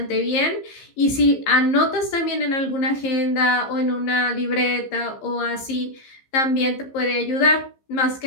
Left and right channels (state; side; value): late; right; 15 ms